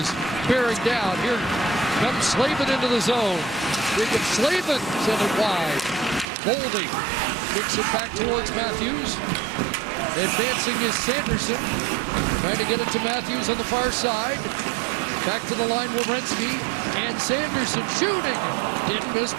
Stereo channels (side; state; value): left; drops out; at 6.2 s